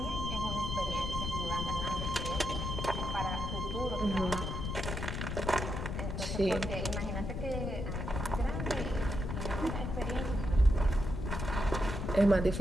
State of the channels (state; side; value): noise; left; rumble, 3 dB below the sound